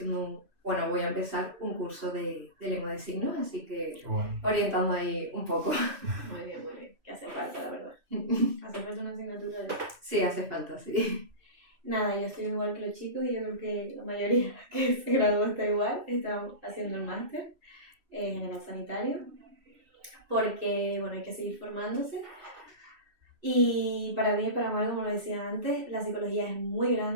bueno, voy a empezar un curso de lengua de signos, así que Bueno. orientando ahí un poco. Muy bien, muy bien. Que hace falta, la verdad. Hace falta una asignatura de... Sí, hace falta, sí. Nada, yo estoy igual que los chicos y yo creo que la mayoría que se graduó está igual. Estamos haciendo el máster general sanitario porque, bueno, hay que seguir formándose. Y para bien y para mal, como lo decía antes, la psicología es muy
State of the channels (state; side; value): late; left; 2.9 ms